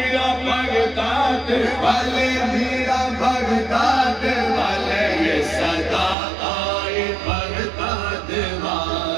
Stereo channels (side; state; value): left; drops out; at 6.2 s